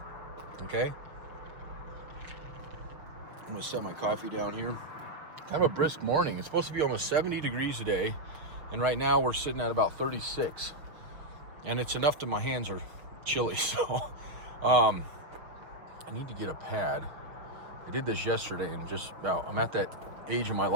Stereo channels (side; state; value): left; late; 6.2 ms